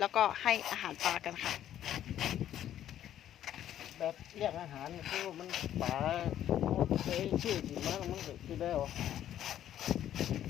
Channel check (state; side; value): quieter; right; 11.3 dB